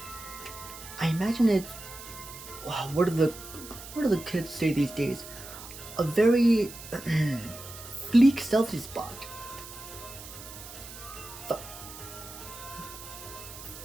I imagine it's wow, what do the kids say these days? A very fleek selfie spot.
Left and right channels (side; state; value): right; noise; hiss, 14 dB below the sound